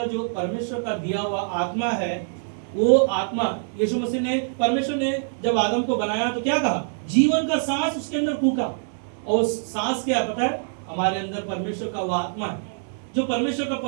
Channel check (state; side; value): silent; left; digital silence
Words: जो परमेश्वर का दिया हुआ आत्मा है, वो आत्मा यीशु मसीह ने, परमेश्वर ने जब आदम को बनाया तो क्या कहा? जीवन का सांस उसके अंदर फूका। और सांस क्या पता है? हमारे अंदर परमेश्वर का वो आत्मा है, जो परमेश्वर का